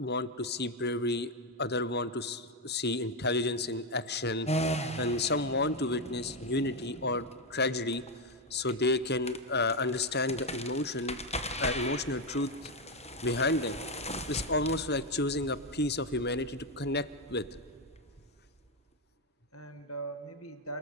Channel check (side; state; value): both; normal; correlation 0.06